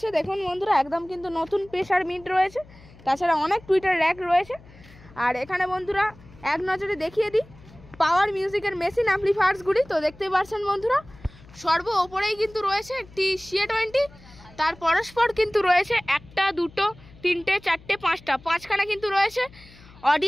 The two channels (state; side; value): noise; left; hum, 23 dB below the sound